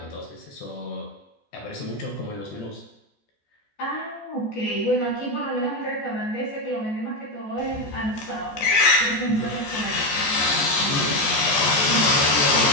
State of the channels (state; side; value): late; right; 14 ms